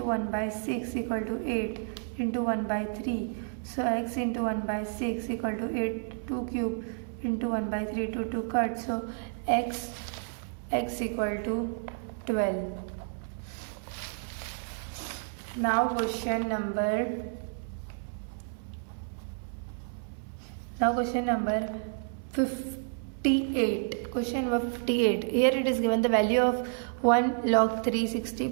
1 by 6 equal to 8 into 1 by 3. So x into 1 by 6 equal to 8, 2 cube into 1 by 3, 2 cut. So x equal to 12. Now question number 58. Question number 58. Here it is given the value of 1 log 360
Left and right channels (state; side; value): silent; left; 57 dB below the other